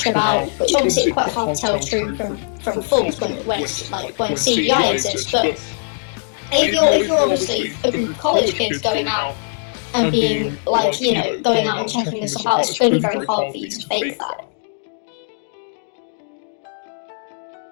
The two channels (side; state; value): right; silent; 64 dB below the other